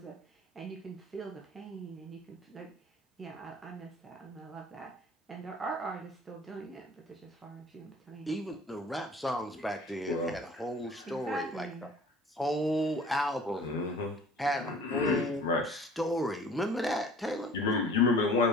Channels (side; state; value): both; normal; correlation 0.48